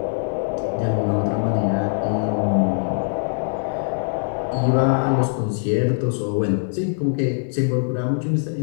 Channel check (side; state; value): right; silent; digital silence